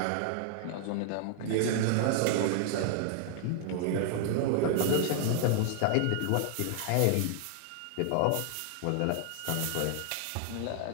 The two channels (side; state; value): both; different; correlation 0.00